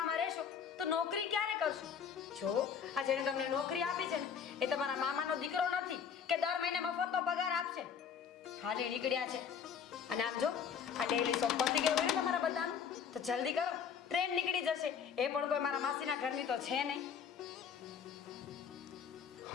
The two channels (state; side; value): quieter; right; 7.3 dB